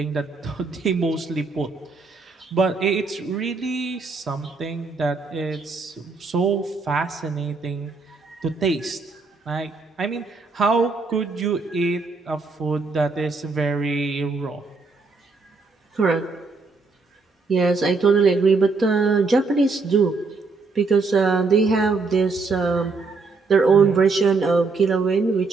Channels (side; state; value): left; quieter; 4.1 dB